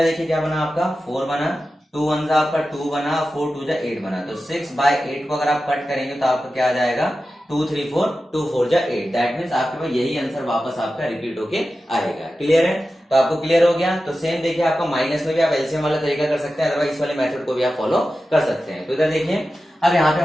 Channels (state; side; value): normal; both; correlation 0.93